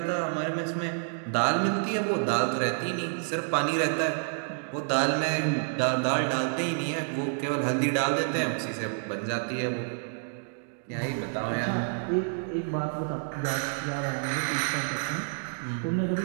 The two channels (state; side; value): silent; left; digital silence